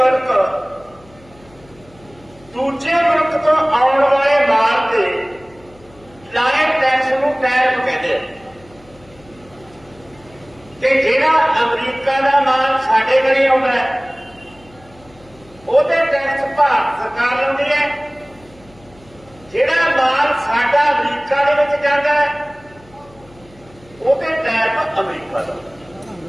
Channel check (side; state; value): left; noise; hum, 26 dB below the sound